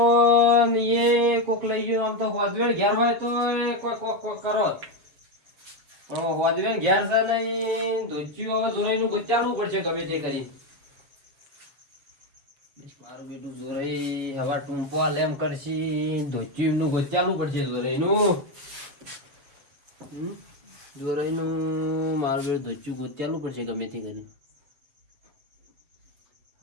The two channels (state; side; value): late; left; 7.3 ms